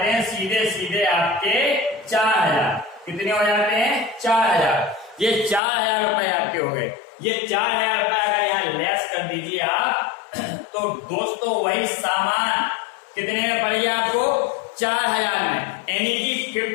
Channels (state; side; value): drops out; right; at 5.6 s